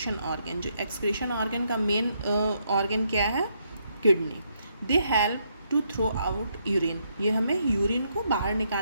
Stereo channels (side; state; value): both; inverted; correlation -0.76